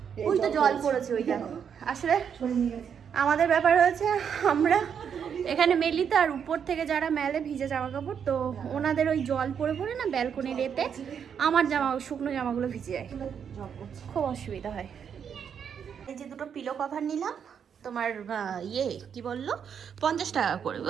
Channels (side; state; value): left; quieter; 7.6 dB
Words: ওই তো জল পড়েছে, ওই দেখো। আসলে আমাদের ব্যাপার হয়েছে, আমরা এখানে মেলি তো, আর উপর থেকে যারা মেলে ভিজে জামা কাপড়, তো ওনাদের ওই জল পড়ে পড়ে না ব্যালকনির এতে আমার শুকনো জামাগুলো ভিজে যায়, খুব অসুবিধা হয়। এই যে দুটো পিলো কভার নিলাম, তোমার কি বললো 50 টাকা করে,